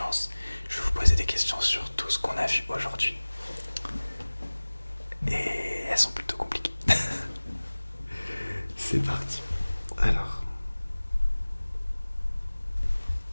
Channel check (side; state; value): both; inverted; correlation -1.00